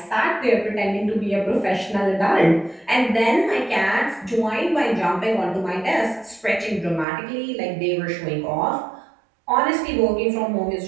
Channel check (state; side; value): drops out; left; at 7.1 s